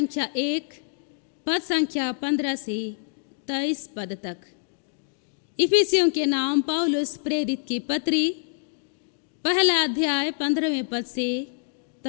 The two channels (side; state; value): right; silent; 61 dB below the other